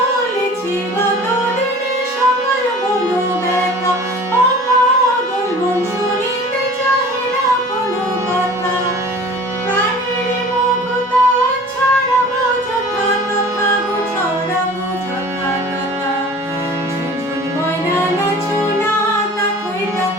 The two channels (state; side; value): normal; both; correlation 0.43